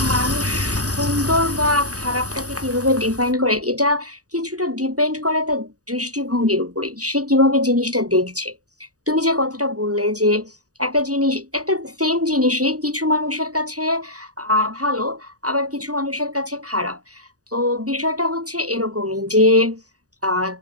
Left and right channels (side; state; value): left; late; 0.67 ms